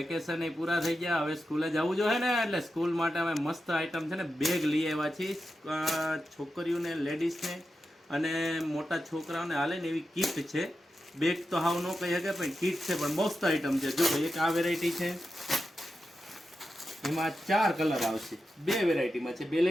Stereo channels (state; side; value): normal; both; correlation 0.90